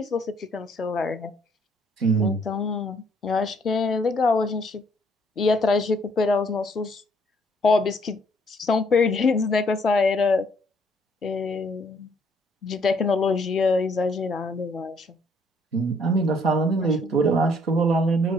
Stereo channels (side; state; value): both; normal; correlation 0.66